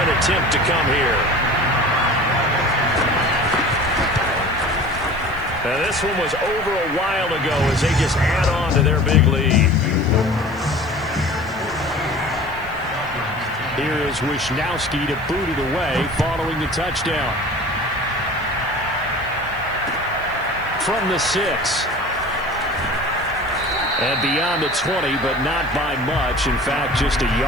attempt to come here. Now this one was over a while ago as they just add on to their big lead. Here is Wisnowski to boot it away following the touchdown. From the 6. And beyond the 20, but not by much. In fact, just a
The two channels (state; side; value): noise; left; hiss, 26 dB below the sound